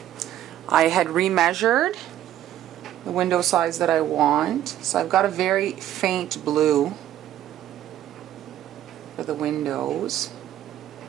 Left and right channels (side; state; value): left; quieter; 12.1 dB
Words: I had remeasured the window size that I want, so I've got a very faint blue for the windows.